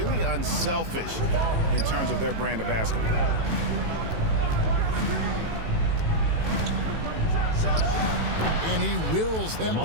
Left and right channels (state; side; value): late; left; 18 ms